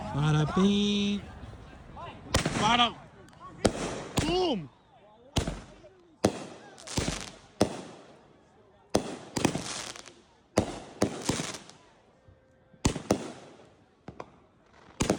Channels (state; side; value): identical; both; correlation 1.00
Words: Bada bing. Bada. Boom.